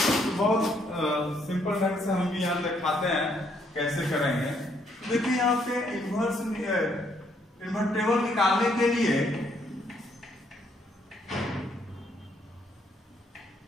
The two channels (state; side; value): normal; both; correlation 0.70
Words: बहुत सिंपल ढंग से हम भी यहाँ दिखाते हैं कैसे करेंगे। देखिए यहाँ पे इन्वर्टेबल निकालने के लिए